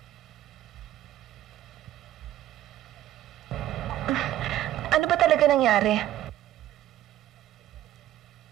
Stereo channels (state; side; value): quieter; left; 13.2 dB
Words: Ano ba talaga nangyari?